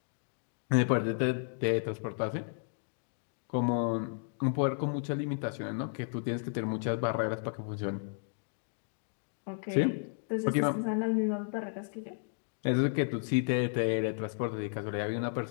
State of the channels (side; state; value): right; silent; digital silence